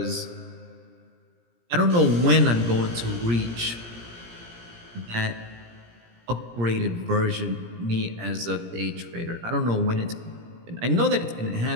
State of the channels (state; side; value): late; left; 17 ms